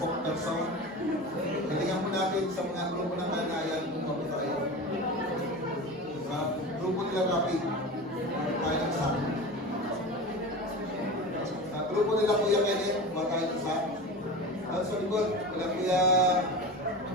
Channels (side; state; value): both; normal; correlation 0.29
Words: Galingan po natin sa mga grupo ng kalanayan kung ano tayo. Sa grupo nila Rapid, tayo ng SAP. Sa grupo nila Kuya Kenneth, tayo ng SAP. At sa likod, wala Kuya